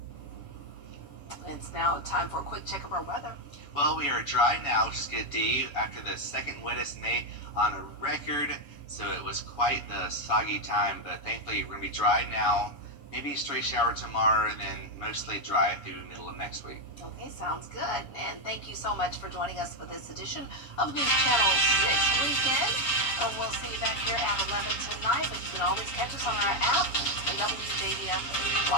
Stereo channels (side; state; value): right; late; 7.0 ms